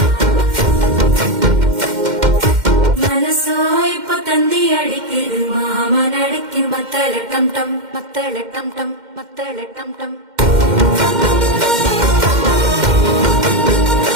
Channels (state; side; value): late; left; 2.1 ms